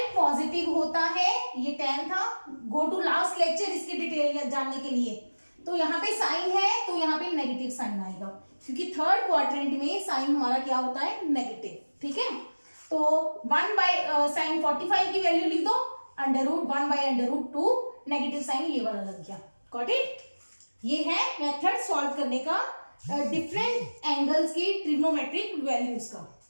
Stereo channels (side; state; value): both; inverted; correlation -1.00